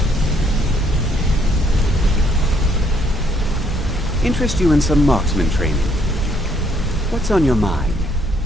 Interest you in some marksman training. What's on your mind?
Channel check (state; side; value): normal; both; correlation 0.68